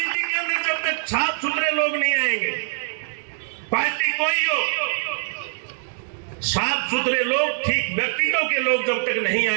के अंदर जब तक साफ सुथरे लोग नहीं आएंगे, पार्टी कोई हो, साफ सुथरे लोग, ठीक व्यक्तित्व के लोग जब तक नहीं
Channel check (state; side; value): silent; left; digital silence